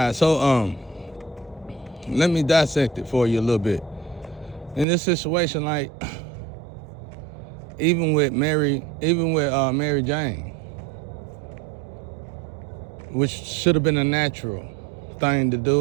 So let me dissect it for you a little bit. In this situation, like even with Mary Jane, which should have been a natural thing to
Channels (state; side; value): drops out; left; at 4.9 s